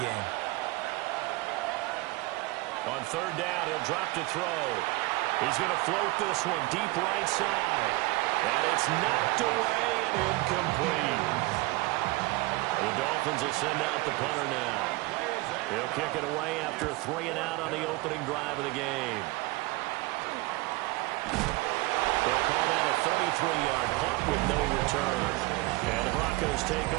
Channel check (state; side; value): quieter; left; 21.9 dB